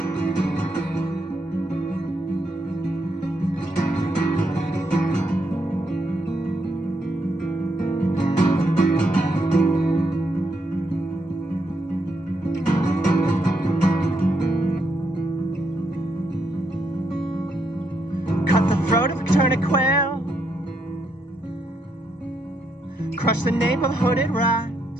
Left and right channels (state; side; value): late; right; 1.0 ms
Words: Cut the throat of a turnip quail, crush the nape of a hooded rat.